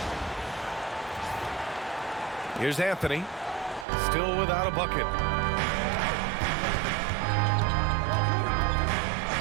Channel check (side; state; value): left; drops out; at 3.9 s